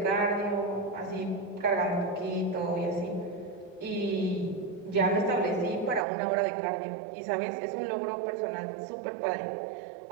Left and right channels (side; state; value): left; drops out; at 6.1 s